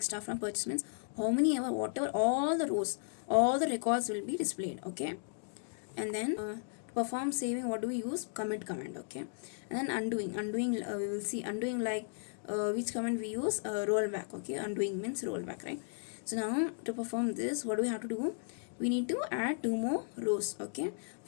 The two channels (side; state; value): right; silent; digital silence